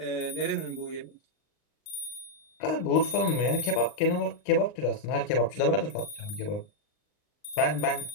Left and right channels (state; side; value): late; right; 39 ms